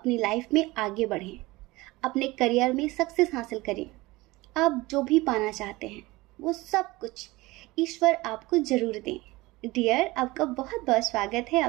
लाइफ में आगे बढ़ें, अपने करियर में सक्सेस हासिल करें। आप जो भी पाना चाहते हैं वो सब कुछ ईश्वर आपको जरूर दें। डियर, आपका बहुत बहुत स्वागत है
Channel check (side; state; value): left; quieter; 21.0 dB